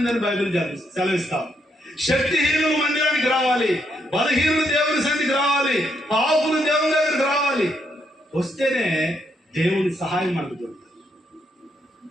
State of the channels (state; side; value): normal; both; correlation 0.77